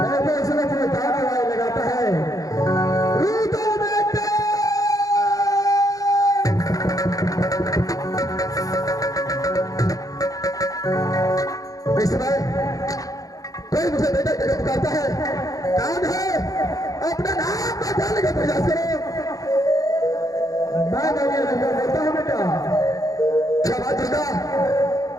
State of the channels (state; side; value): late; right; 0.17 ms